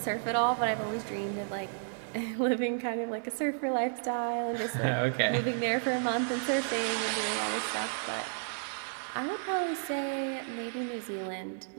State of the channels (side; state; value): left; silent; digital silence